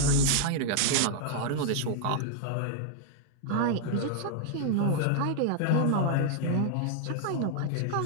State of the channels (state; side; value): different; both; correlation 0.00